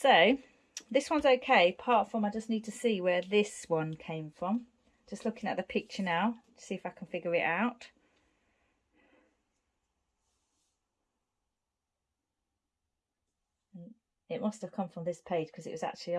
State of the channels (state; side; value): identical; both; correlation 1.00